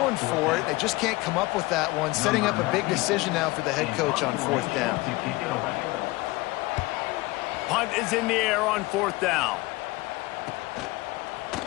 for it. They just can't come up with that one. Setting up a big decision now for the head coach on 4th down. Punt is in the air on 4th down.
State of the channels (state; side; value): quieter; right; 21.3 dB